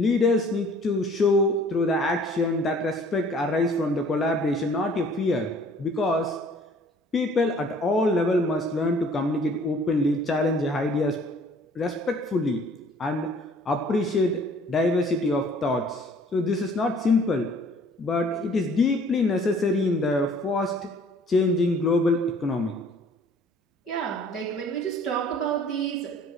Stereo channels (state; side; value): normal; both; correlation 0.55